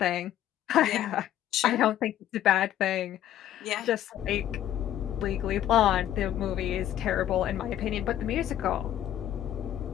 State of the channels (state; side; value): quieter; right; 11.9 dB